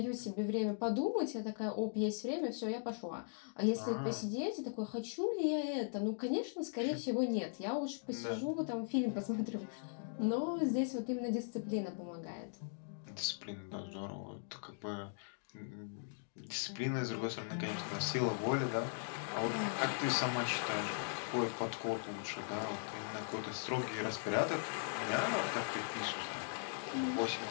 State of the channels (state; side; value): silent; right; digital silence